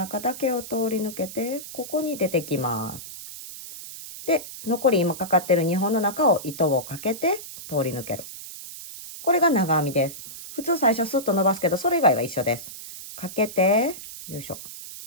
だけを通り抜けて、ここに出てきます。で、残り今かかってる2本の中を糸をかけて通り抜ける。これが長編みです。普通最初スッと伸ばすけど、それ以外は一緒です。かけて、よいしょ。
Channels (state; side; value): noise; right; hiss, 12 dB below the sound